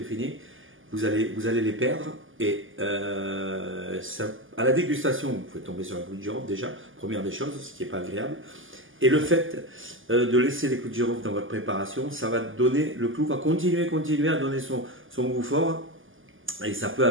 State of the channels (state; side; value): late; left; 0.58 ms